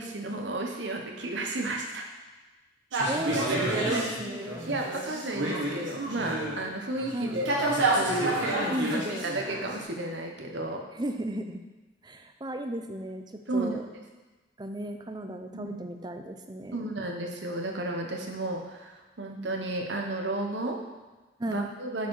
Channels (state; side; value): normal; both; correlation 0.21